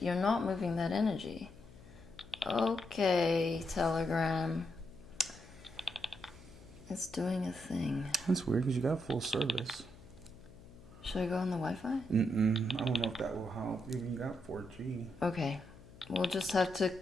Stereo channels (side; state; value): left; noise; hum, 20 dB below the sound